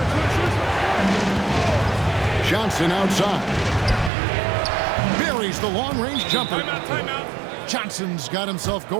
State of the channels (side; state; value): left; drops out; at 4.1 s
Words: Johnson outside. Buries the long-range jumper. Timeout. Johnson's got himself